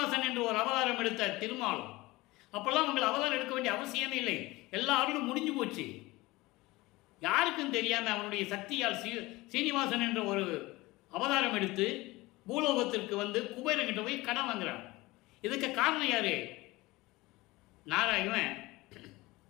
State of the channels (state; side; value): quieter; right; 20.8 dB